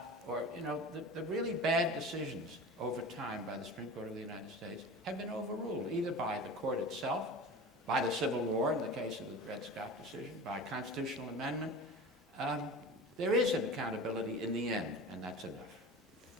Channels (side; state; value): both; normal; correlation 0.34